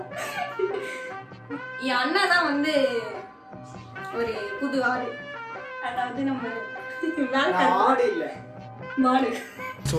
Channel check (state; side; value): identical; both; correlation 1.00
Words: என் அண்ணா தான் ஒரு புது ஆடு. அதாவது நம்ம ஆடு இல்ல மாடு.